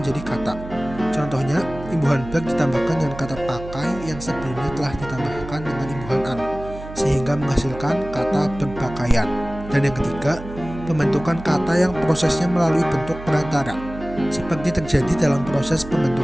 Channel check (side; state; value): right; noise; hum, 13 dB below the sound